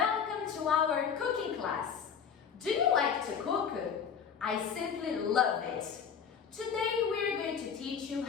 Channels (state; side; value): quieter; right; 7.2 dB